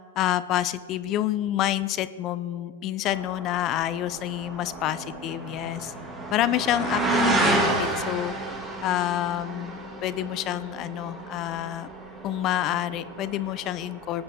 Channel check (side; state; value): right; quieter; 5.3 dB